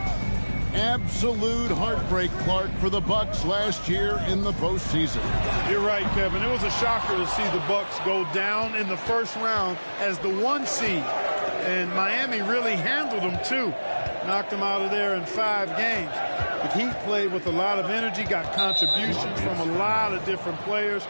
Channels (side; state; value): both; inverted; correlation -1.00